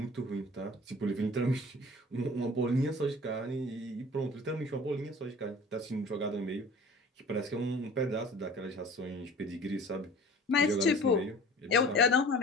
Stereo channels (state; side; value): normal; both; correlation 0.44